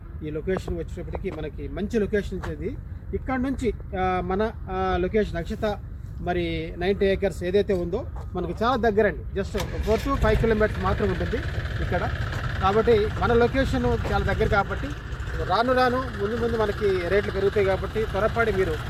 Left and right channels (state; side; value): identical; both; correlation 1.00